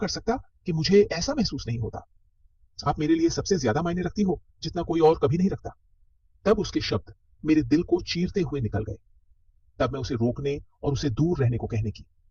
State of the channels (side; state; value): both; identical; correlation 1.00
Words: सकता कि मुझे ऐसा महसूस नहीं होता। आप मेरे लिए सबसे ज्यादा मायने रखती हो, जितना कोई और कभी नहीं रखता। तब उसके शब्द मेरे दिल को चीरते हुए निकल गए। तब मैं उसे रोकने और उसे दूर रहने को कहने की